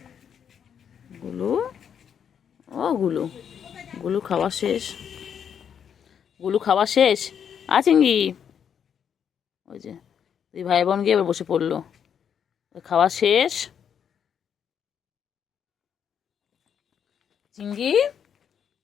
গুলু, ও গুলু, গুলু খাওয়া শেষ, গুলু খাওয়া শেষ। চিংড়ি, ওই যে দুই ভাই বোন গিয়ে এবার বসে পড়লো, খাওয়া শেষ। চিংড়ি,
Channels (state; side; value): quieter; right; 8.0 dB